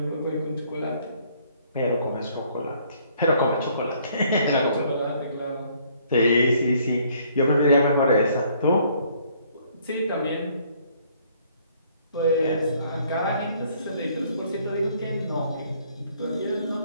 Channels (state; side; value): inverted; both; correlation -0.63